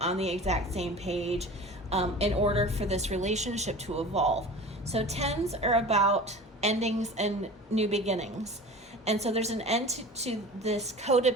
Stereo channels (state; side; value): normal; both; correlation 0.37